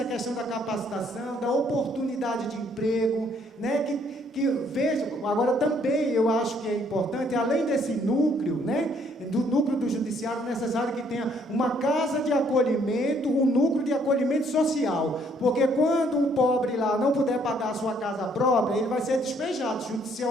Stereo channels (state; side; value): normal; both; correlation 0.66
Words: questão da capacitação, da oportunidade de emprego, né? Que vejam, agora também eu acho que é importante, além desse núcleo, né? Do núcleo do judiciário, necessário que tenha uma casa de acolhimento, um núcleo de acolhimento social, porque quando o pobre lá não puder pagar a sua casa própria, ele vai ser despejado